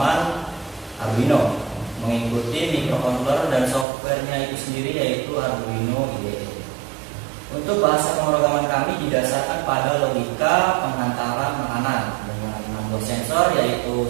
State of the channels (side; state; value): left; drops out; at 3.9 s